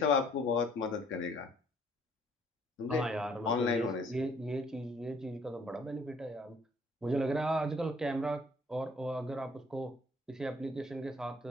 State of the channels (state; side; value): normal; both; correlation 0.60